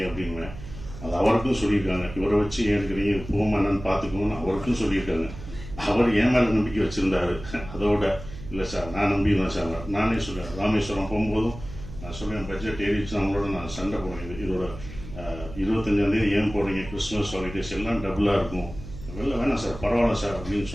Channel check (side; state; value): right; noise; hum, 13 dB below the sound